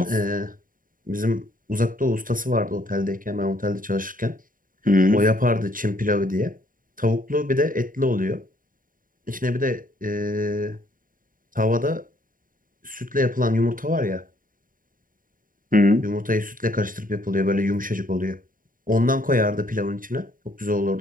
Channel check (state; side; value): late; left; 0.40 ms